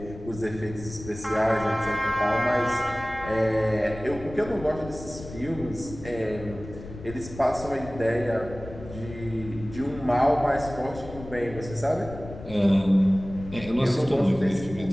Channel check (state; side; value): noise; left; rumble, 13 dB below the sound